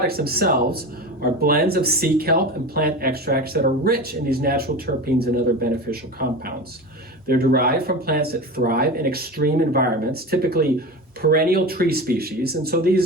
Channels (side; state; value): both; normal; correlation 0.28